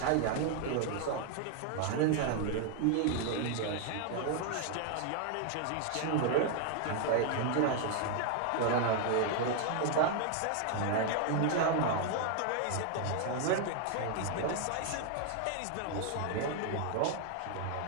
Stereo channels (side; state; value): both; different; correlation 0.00